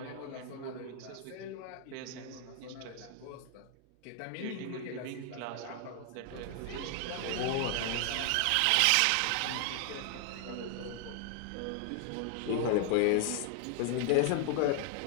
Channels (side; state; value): both; different; correlation 0.00